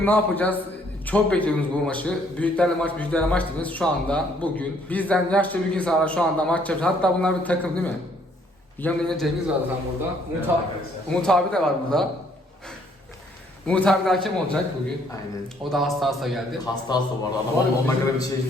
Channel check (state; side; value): normal; both; correlation 0.65